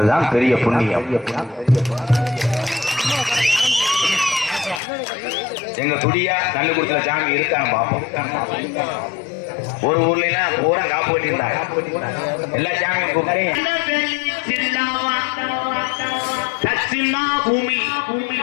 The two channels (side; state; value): right; drops out; at 4.8 s